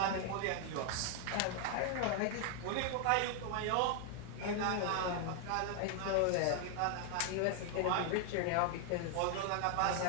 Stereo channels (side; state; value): both; different; correlation 0.00